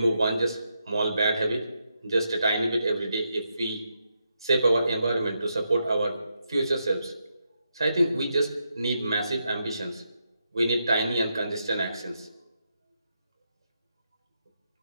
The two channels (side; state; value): both; inverted; correlation -0.82